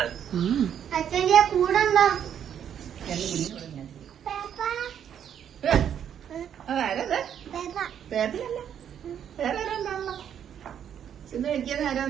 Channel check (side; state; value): left; quieter; 9.1 dB